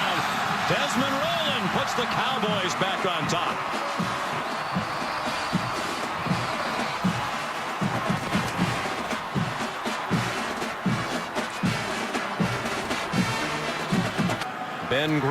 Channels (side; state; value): both; identical; correlation 1.00